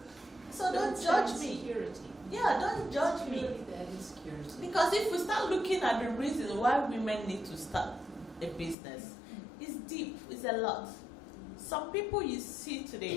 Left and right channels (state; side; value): drops out; right; at 8.8 s